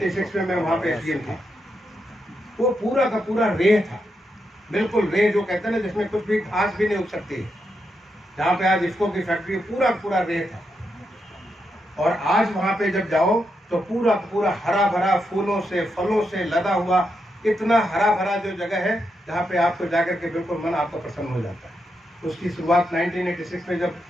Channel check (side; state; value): both; normal; correlation 0.83